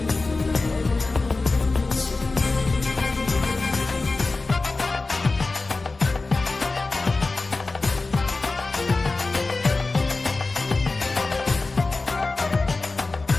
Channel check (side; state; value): right; quieter; 3.5 dB